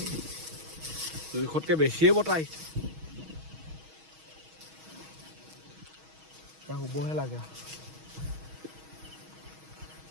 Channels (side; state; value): left; late; 6.3 ms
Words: জোখতকৈ বেছিয়ে বতাহ আহিছে। এতিয়া শুবহে লাগে।